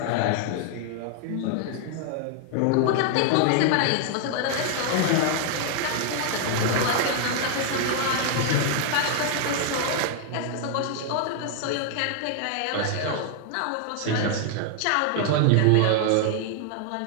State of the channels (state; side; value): different; both; correlation 0.00